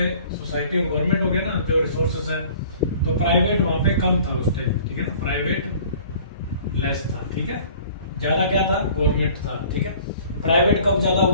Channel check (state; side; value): inverted; both; correlation -0.50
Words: सोसाइटी और गवर्नमेंट हो गया ना जो रिसोर्सेस है, तो प्राइवेट वहां पे कम था उस टाइम, ठीक है ना, प्राइवेट लेस था, ठीक है, ज्यादा क्या था, गवर्नमेंट था, ठीक है। प्राइवेट कब ज्यादा